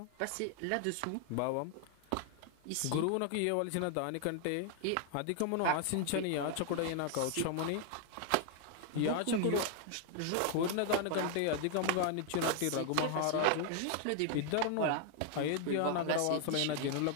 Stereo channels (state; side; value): different; both; correlation 0.00